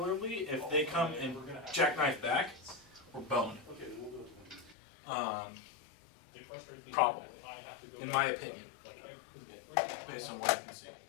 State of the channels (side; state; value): right; drops out; at 4.8 s